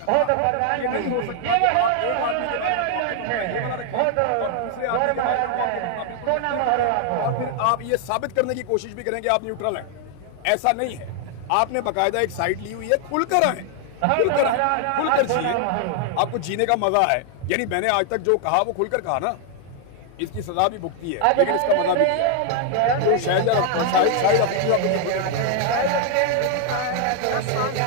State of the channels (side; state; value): both; different; correlation 0.00